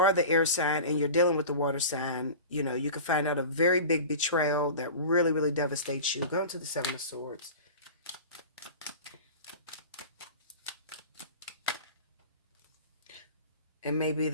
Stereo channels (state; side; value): inverted; both; correlation -0.35